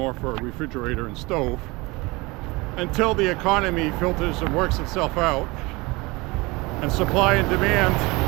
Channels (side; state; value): left; quieter; 24.0 dB